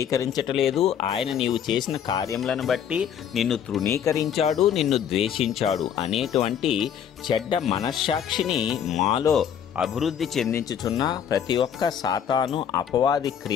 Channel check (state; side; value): quieter; right; 8.7 dB